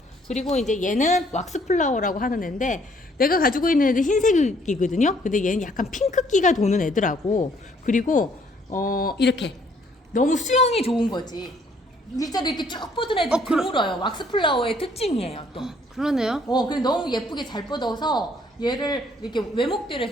그리고 이제 얘는 왁스 플라워라고 하는 애인데 내가 가지고 있는 애는 흰색이거든요. 근데 얘는 약간 핑크기가 도는 애더라고. 그리고 이렇게 너무 수영이 좋은 거지. 일자로 이렇게 쭉 뻗은 애들 드물어요. 왁스 플라워의 특징이에요, 또. 그러네요. 근데 너무 예쁘게 잘 뻗어서 얘를 이렇게 외목대로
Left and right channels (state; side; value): normal; both; correlation 0.64